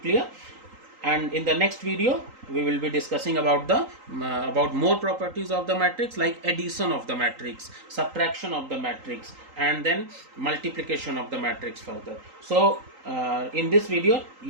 And in the next video we will be discussing about the about more properties of the matrix, like addition of the matrix, subtraction of the matrix, and then multiplication of the matrix further. So in this video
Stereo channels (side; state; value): left; late; 3.8 ms